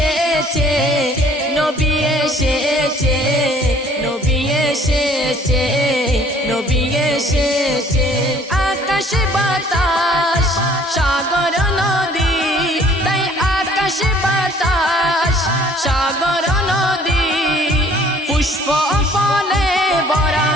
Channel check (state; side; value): normal; both; correlation 0.57